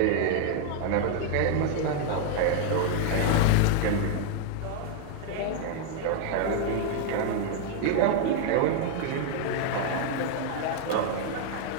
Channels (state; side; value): different; both; correlation 0.00